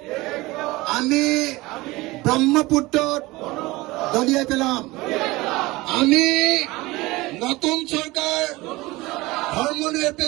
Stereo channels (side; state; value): left; quieter; 20.8 dB